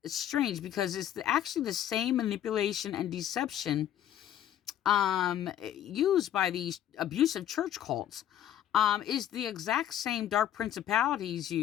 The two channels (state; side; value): quieter; right; 11.0 dB